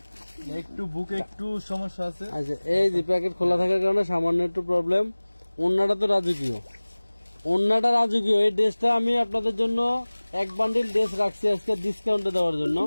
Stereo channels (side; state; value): both; inverted; correlation -1.00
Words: একটু বুকে একটু সমস্যা আছে। আচ্ছা, এই যে প্যাকেট খোলা থাকার কারণে সামান্য একটু প্রবলেম। ওড়নাটা তো রাজকীয়, ওড়নাটা রাজকীয়। এই ড্রেসটা আমি আপনাদের জন্য 1 বান্ডিল ড্রেস রাখছি আজকে ডিসকাউন্টে দেওয়ার জন্য।